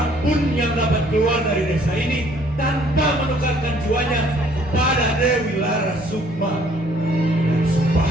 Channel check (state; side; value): normal; both; correlation 0.61